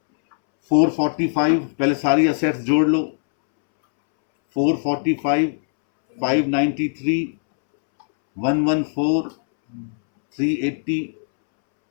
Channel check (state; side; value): silent; right; 66 dB below the other